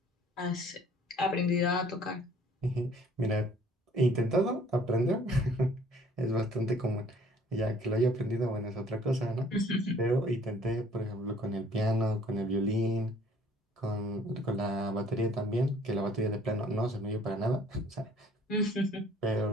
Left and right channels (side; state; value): both; normal; correlation 0.56